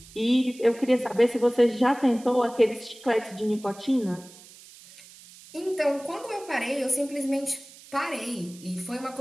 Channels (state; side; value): noise; right; hiss, 21 dB below the sound